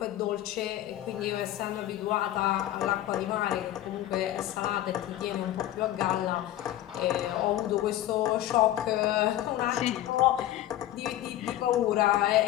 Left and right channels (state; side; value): quieter; right; 13.6 dB